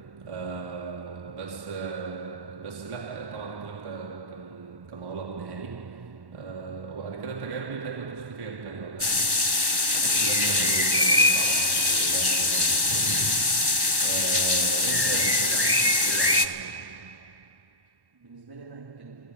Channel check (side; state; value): left; late; 1.1 ms